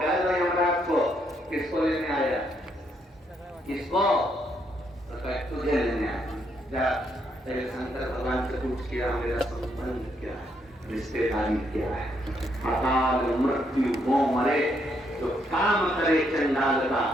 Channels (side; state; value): both; normal; correlation 0.74